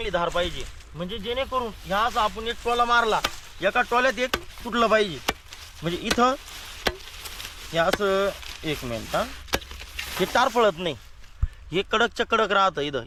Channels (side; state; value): both; identical; correlation 1.00